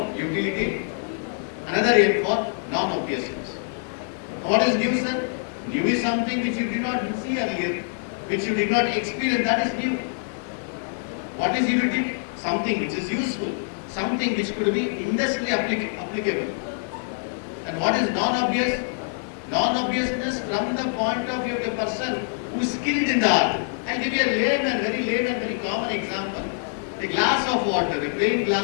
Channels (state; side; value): silent; right; digital silence